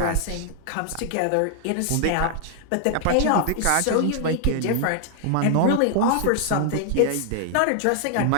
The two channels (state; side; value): different; both; correlation 0.00